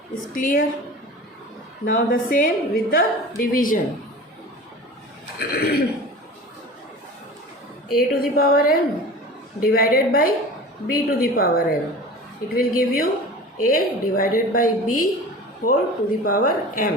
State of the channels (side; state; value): both; normal; correlation 0.37